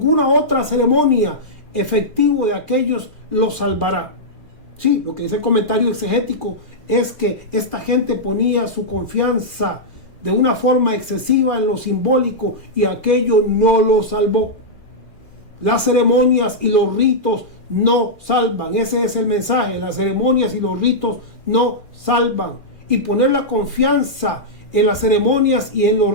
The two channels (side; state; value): right; late; 2.4 ms